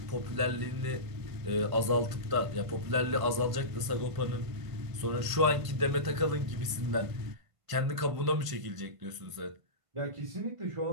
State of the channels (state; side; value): late; left; 1.5 ms